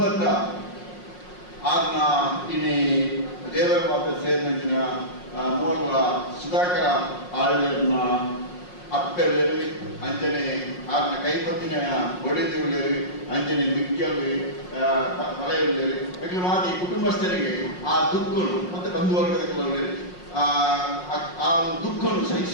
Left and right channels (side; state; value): right; late; 5.5 ms